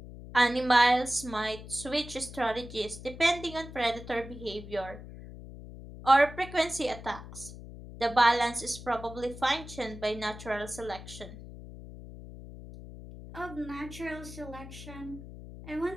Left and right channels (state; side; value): noise; left; hum, 14 dB below the sound